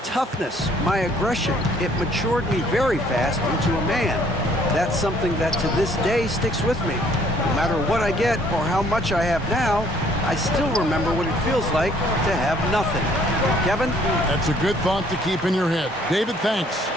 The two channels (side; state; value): both; normal; correlation 0.61